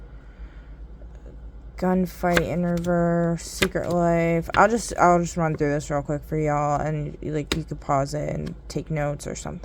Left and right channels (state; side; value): identical; both; correlation 1.00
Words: Gunfight in reverse, secret life. I'll just run through this real quick for y'all, and like you could pause it and take notes or